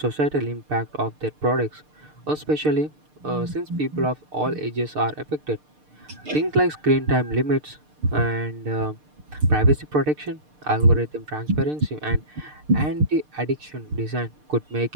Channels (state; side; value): late; left; 6.6 ms